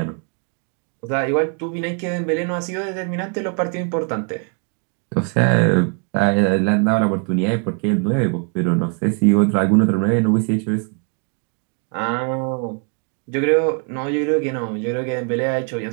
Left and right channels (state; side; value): quieter; left; 34.8 dB